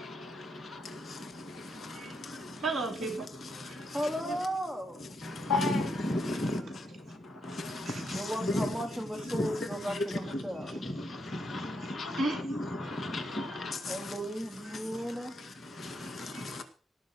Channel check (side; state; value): both; normal; correlation 0.79